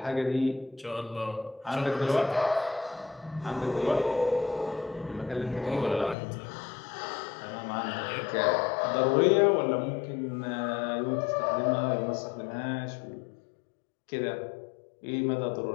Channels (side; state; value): right; drops out; at 6.2 s